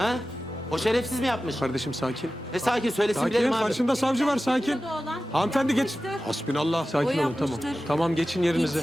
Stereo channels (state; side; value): normal; both; correlation 0.94